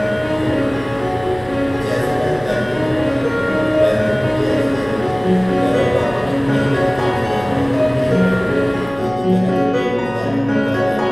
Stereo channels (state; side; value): noise; left; hum, 20 dB below the sound